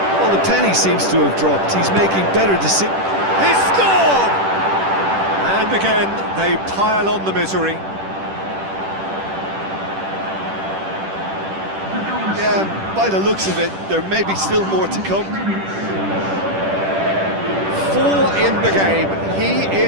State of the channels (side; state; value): left; late; 10 ms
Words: the penny seems to have dropped. He's making better decisions. He scored! And again, they pile on the misery. Yeah, by the looks of it, there may be still more to come. 4 in the game, he